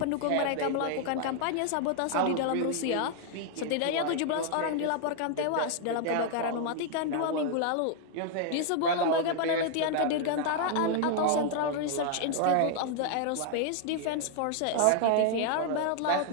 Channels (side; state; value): both; different; correlation 0.00